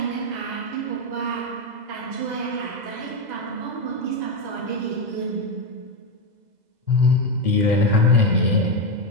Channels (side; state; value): left; late; 2.0 ms